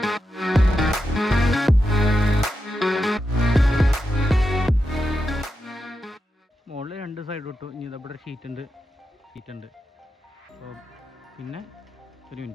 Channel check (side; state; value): both; normal; correlation 0.87